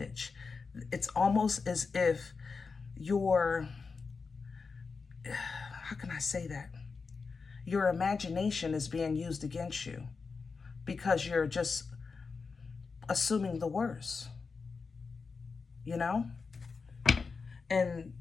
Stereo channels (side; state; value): right; quieter; 4.8 dB